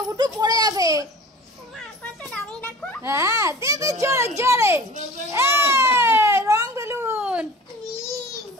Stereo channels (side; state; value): both; normal; correlation 0.42